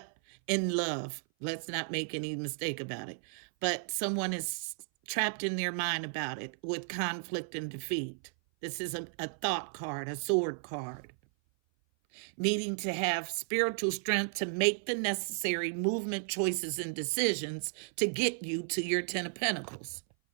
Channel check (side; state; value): left; silent; 55 dB below the other